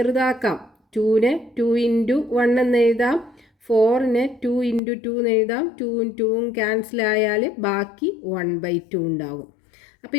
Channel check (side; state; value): right; drops out; at 4.8 s